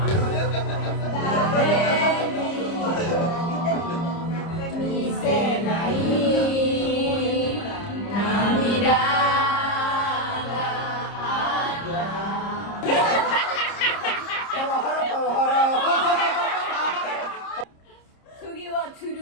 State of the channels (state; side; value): late; right; 30 ms